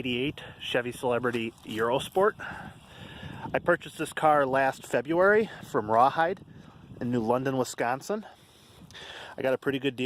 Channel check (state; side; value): identical; both; correlation 1.00